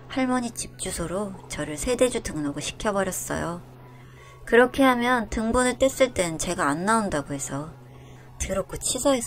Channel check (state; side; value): identical; both; correlation 1.00